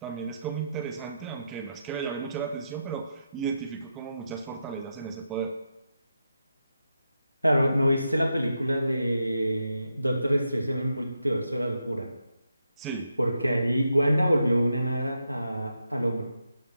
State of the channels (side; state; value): both; inverted; correlation -0.84